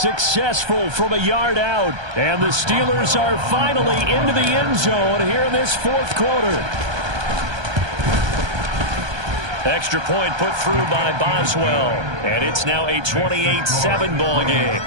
from a yard out. And the Steelers are finally into the end zone here in this 4th quarter. Extra point put through by Boswell. And it's now a 28-7 ball game.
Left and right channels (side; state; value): left; late; 1.2 ms